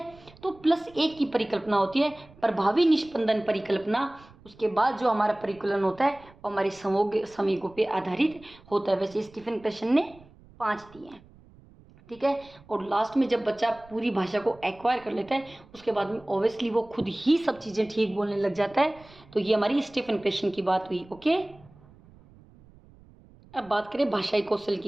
तो +1 की परिकल्पना होती है प्रभावी निष्पंदन परिकल्पना। उसके बाद जो हमारा परिकलन होता है वो हमारे संवेगों पे आधारित होता है। वैसे स्टीफन पेशन ने 5 दिए हैं, ठीक है। और लास्ट में जब बच्चा पूरी भाषा को एक्वायर कर लेता है उसके बाद में ऑब्वियसली वो खुद ही सब चीज़ें ठीक बोलने लग जाता है। तो ये हमारी स्टीफन पेशन की बात हुई, ओके। अब बात करें भाषाई कौशल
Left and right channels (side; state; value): right; noise; rumble, 25 dB below the sound